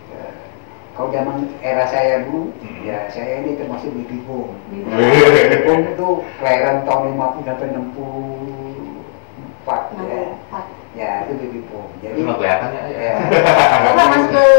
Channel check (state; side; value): silent; right; digital silence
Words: Kalau zaman era saya dulu, ya saya ini termasuk baby boom. Baby boom itu kelahiran tahun 50 sampai 64 ya. Ya itu baby boom. Jadi nggak kelihatan ya. Bapak masuk